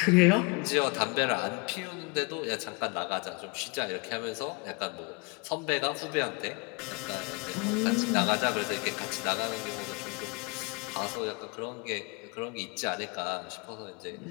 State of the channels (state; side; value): quieter; right; 30.7 dB